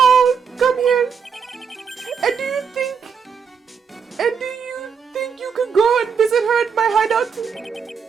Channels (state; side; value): quieter; left; 6.3 dB